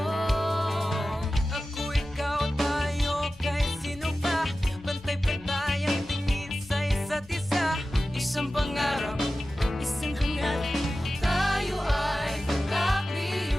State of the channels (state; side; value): normal; both; correlation 0.95